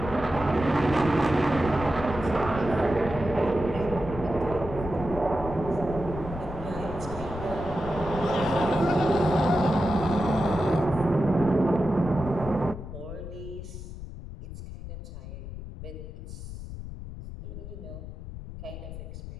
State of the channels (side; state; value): left; noise; rumble, 10 dB below the sound